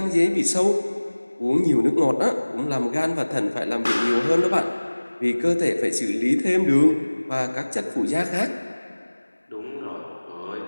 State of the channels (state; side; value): inverted; both; correlation -1.00